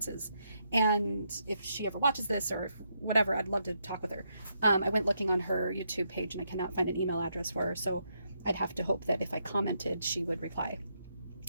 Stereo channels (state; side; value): inverted; both; correlation -0.79